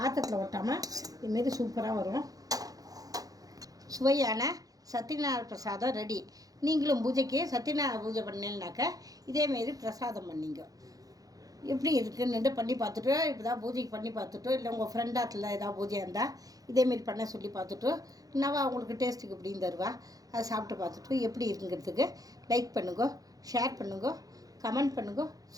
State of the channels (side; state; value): left; late; 0.17 ms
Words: ஒட்டாமல் இதுமாரி சூப்பராக வரும். சுவையான சத்யநாராயண பிரசாதம் ரெடி. நீங்களும் பூஜைக்கு சத்யநாராயண பூஜை பண்ணீங்கன்னாக்கா இதேமாரி பிரசாதம் பண்ணிங்க. எப்படி இருக்குன்னு பண்ணி பார்த்துட்டு, இப்போ தான் பூஜைக்கு பண்ணி பார்த்துட்டு, இல்லை உங்கள் ஃப்ரெண்டாத்தில் ஏதாவது பூஜை இருந்தால் இதேமாரி பண்ண சொல்லி பார்த்துட்டு, என்னவா அவங்களுக்கு டேஸ்ட்டுக்கு எப்படின்னு தருவா, அதை சாப்பிட்டு பார்த்துட்டு எப்படி இருக்குங்கிறதுக்கு லைக் பண்ணுங்க, ஷேர் பண்ணுங்க, கமெண்ட் பண்ணுங்க,